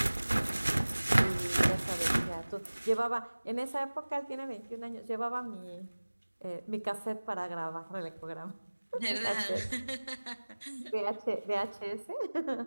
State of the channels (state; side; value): inverted; both; correlation -1.00